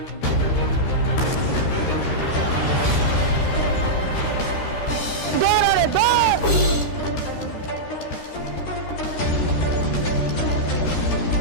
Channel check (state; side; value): late; right; 13 ms